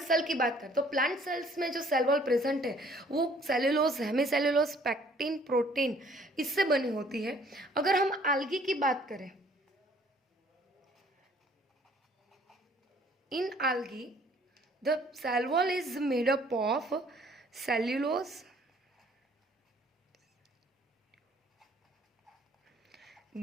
cell की बात करें तो plant cells में जो cell wall present है वो सेलुलोज, हेमीसेलुलोज, पैक्टिन, प्रोटीन इससे बनी होती है. अगर हम आल्गी की बात करें, in algae the cell wall is made up of cellulose,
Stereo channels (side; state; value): both; normal; correlation 0.58